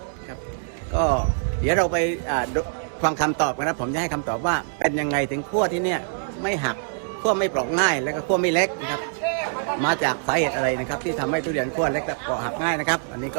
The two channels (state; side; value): silent; left; digital silence